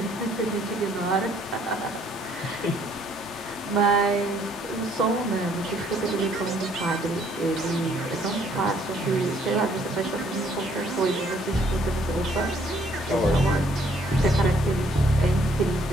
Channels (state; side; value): normal; both; correlation 0.64